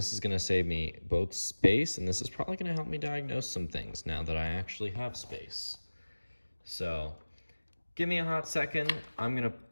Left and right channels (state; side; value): inverted; both; correlation -1.00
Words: is gonna save me both space, and this is probably gonna help me diagnose some things now that I actually have space. So give me a hot second. I'm gonna